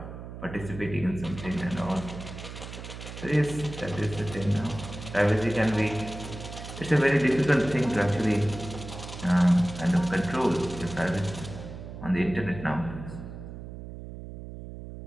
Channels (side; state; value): right; noise; hum, 11 dB below the sound